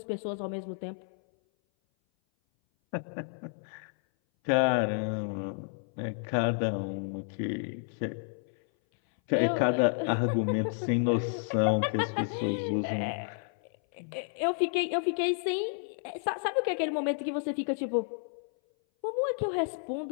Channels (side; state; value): right; silent; 57 dB below the other